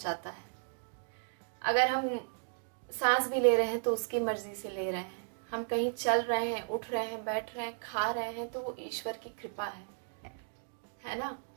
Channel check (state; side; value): silent; left; digital silence